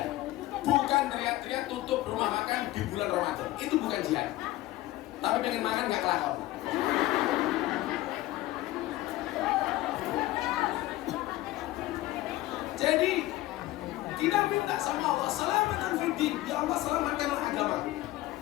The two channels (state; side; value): quieter; right; 16.8 dB